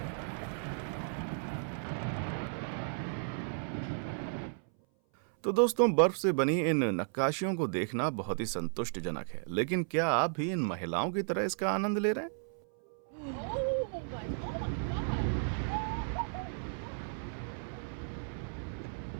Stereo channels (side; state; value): left; silent; 55 dB below the other